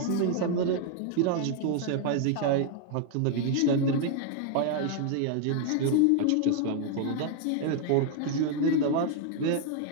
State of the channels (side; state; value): both; different; correlation 0.00